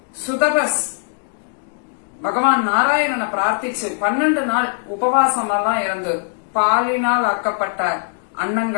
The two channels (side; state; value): right; silent; digital silence